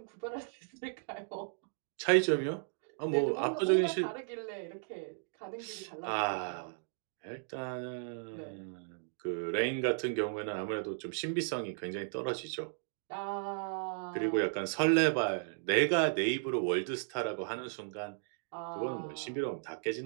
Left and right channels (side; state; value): left; silent; digital silence